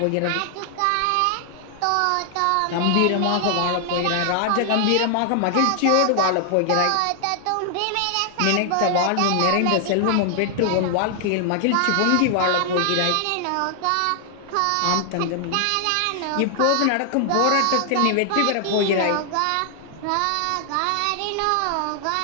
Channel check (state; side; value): different; both; correlation 0.00